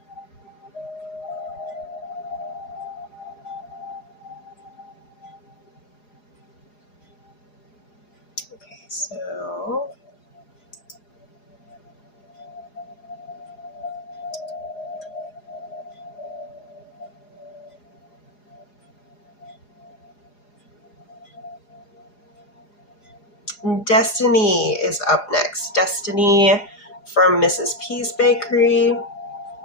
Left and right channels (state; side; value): late; right; 4.8 ms